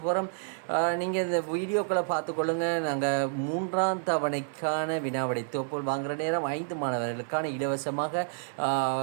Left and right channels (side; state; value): left; silent; 58 dB below the other